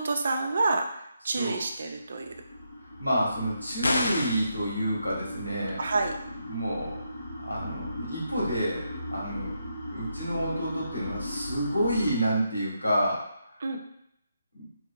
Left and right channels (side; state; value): both; inverted; correlation -0.81